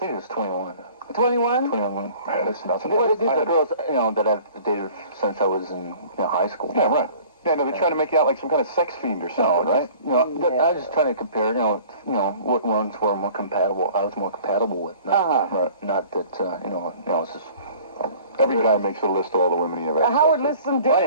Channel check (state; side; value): inverted; both; correlation -0.48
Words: it was 21. 21? 21 women. Man, that's nothing. Well, these are girls, that I've dated since I was in high school. Yeah, right. Yeah, no, they're trying to make you out like some kind of sex fiend or something, right? I was just trying to compare, what ones were more compatible. I was more compatible with. Right. Not that, it's just... Every guy makes a list of all the women he ever had. Howard lists some I